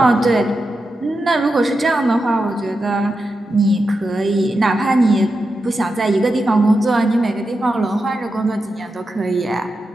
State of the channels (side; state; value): both; normal; correlation 0.89